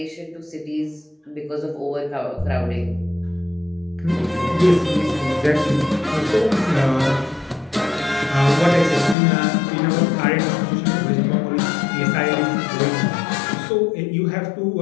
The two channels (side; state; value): right; drops out; at 9.2 s